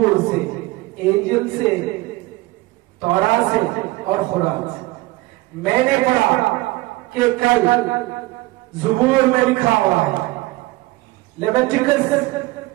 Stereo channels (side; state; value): left; quieter; 20.5 dB